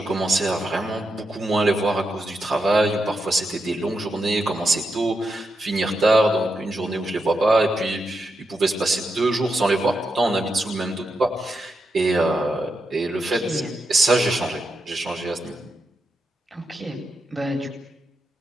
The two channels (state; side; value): normal; both; correlation 0.85